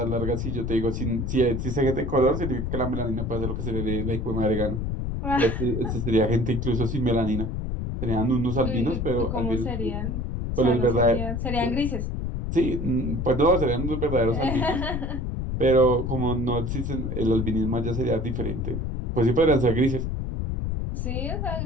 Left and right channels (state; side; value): noise; left; rumble, 2 dB below the sound